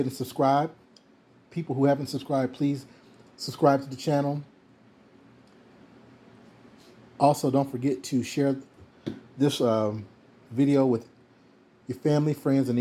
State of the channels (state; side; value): identical; both; correlation 1.00